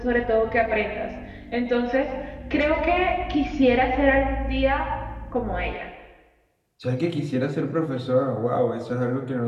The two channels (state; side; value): identical; both; correlation 1.00